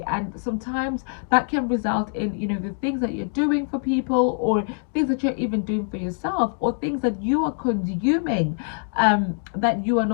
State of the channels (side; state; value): right; silent; 59 dB below the other